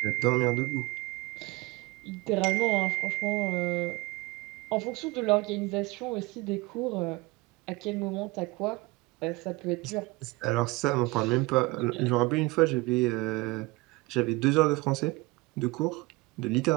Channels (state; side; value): quieter; left; 22.6 dB